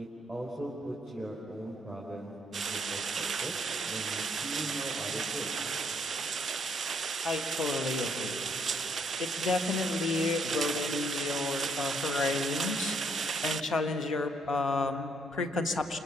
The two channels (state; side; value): normal; both; correlation 0.70